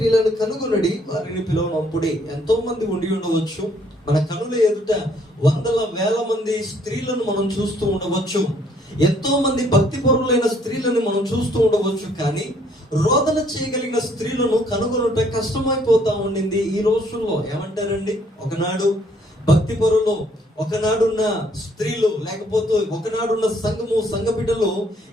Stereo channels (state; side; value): normal; both; correlation 0.65